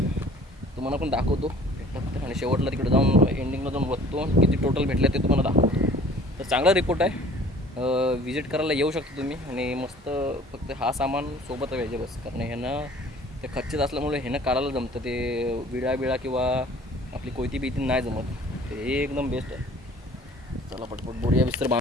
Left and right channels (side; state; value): both; normal; correlation 0.50